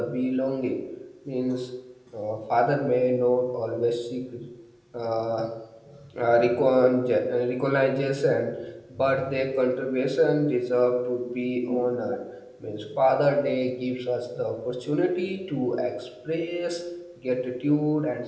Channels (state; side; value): identical; both; correlation 1.00